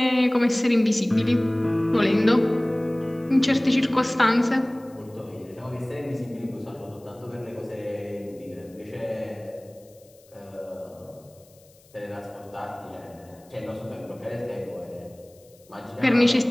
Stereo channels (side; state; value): left; noise; hiss, 29 dB below the sound